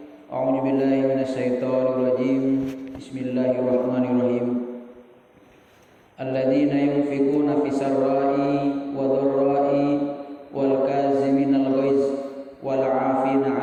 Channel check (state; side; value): identical; both; correlation 1.00